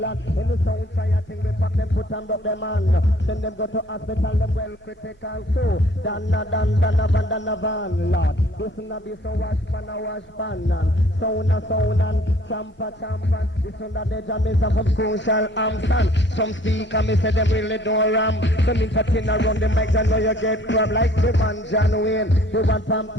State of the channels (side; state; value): both; normal; correlation 0.57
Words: In the sound fire thing we pack them put and up them man. Send them go to hospital them well critical too. Dan a van, Lord. This na be so wash pan. Sound and champa. This one that the Jamaica from social Amsterdam. Some speaker me say them really don't ram. Some entertain around the mic and know you get crab like the man John Wayne, the one